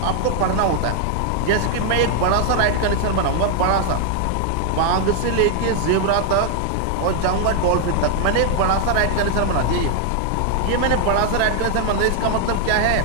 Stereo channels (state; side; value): different; both; correlation 0.00